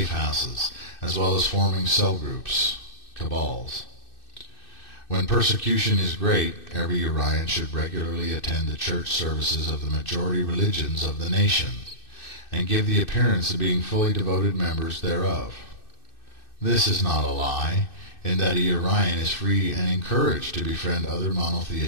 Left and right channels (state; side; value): late; right; 2.6 ms